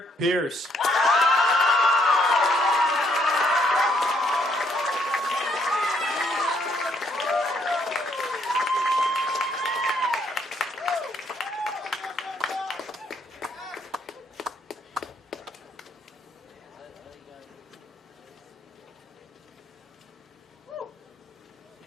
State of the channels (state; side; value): normal; both; correlation 0.70